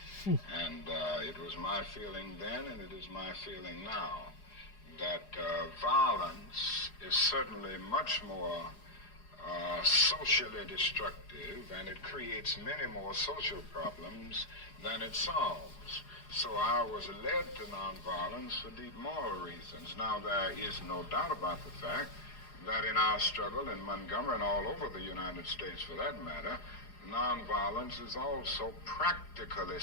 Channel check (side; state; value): right; late; 4.8 ms